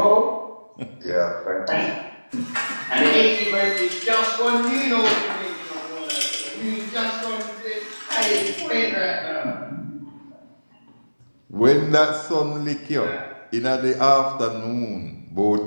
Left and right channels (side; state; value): both; inverted; correlation -1.00